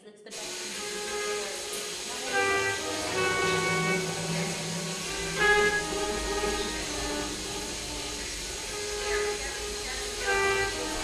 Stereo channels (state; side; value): identical; both; correlation 1.00